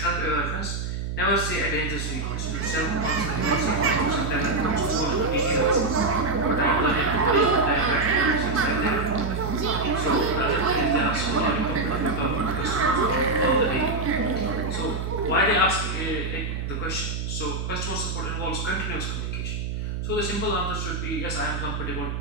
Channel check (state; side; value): noise; right; hum, 4 dB below the sound